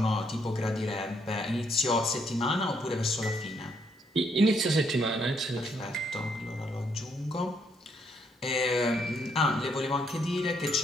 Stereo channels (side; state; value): both; normal; correlation 0.73